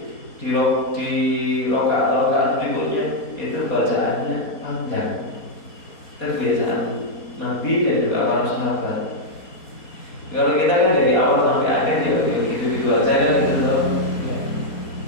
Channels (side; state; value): right; late; 4.2 ms